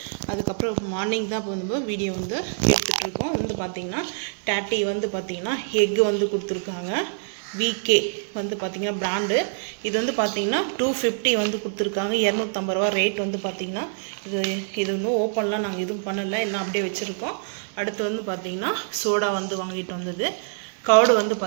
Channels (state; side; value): silent; left; digital silence